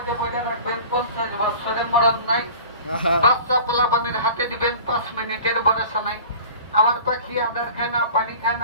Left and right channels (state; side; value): inverted; both; correlation -0.41